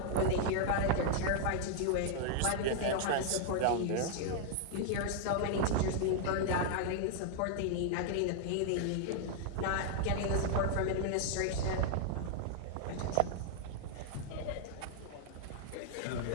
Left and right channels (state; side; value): different; both; correlation 0.00